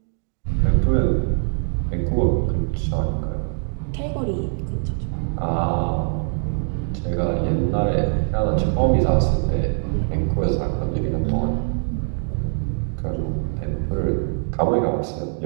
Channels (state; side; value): silent; left; 64 dB below the other